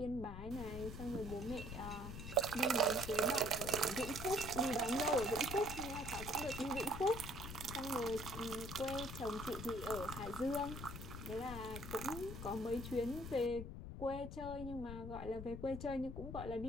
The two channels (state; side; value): noise; left; rumble, 8 dB below the sound